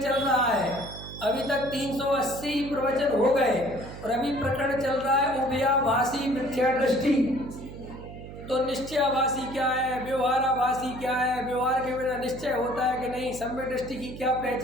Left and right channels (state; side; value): noise; right; hum, 13 dB below the sound